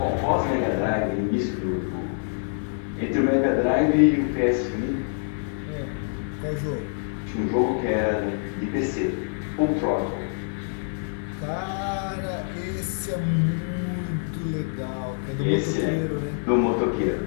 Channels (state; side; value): silent; right; digital silence